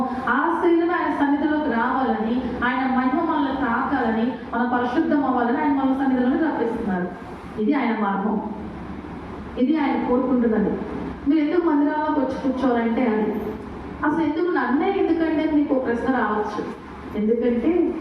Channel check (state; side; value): identical; both; correlation 1.00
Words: ఆ శరీరం ఆయన సన్నిధిలోకి రావాలని, ఆయన మహిమ మనల్ని తాకాలని, మనం పరిశుద్ధం అవ్వాలని ఆయన మన సన్నిధిలోకి రప్పిస్తున్నారు. ఇది ఆయన మార్గం, ఇది ఆయన కోరుకుంటున్నది. మీరు ఎందుకు మందిరాల్లోకి వచ్చి కూర్చోవాలంటే అది అసలు ఎందుకు నన్నే ఎందుకంటే మీకు ఒక ప్రశ్న రావచ్చు. ఎందుకంటే